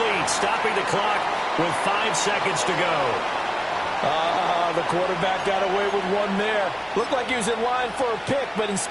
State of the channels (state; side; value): identical; both; correlation 1.00